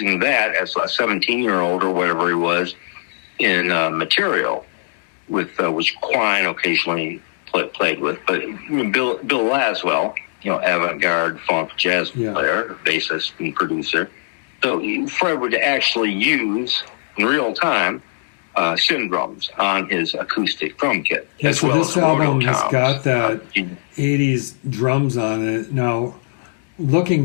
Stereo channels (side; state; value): right; silent; digital silence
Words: that as a 17-year-old or whatever he was in Mistrial, with which Quine occasionally played with. But Bill Laswell, avant-garde funk jazz player, bassist and producer. So Fred would actually use in real time Syn drums on his acoustic drum kit. Yeah, so this album has got that 80s drums on it. Now,